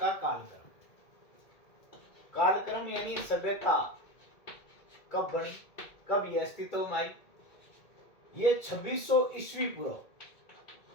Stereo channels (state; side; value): late; right; 2.2 ms